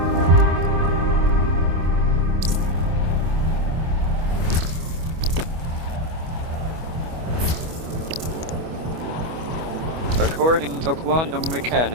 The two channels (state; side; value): late; left; 25 ms